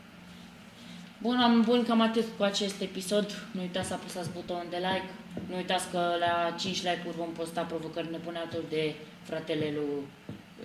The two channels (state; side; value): identical; both; correlation 1.00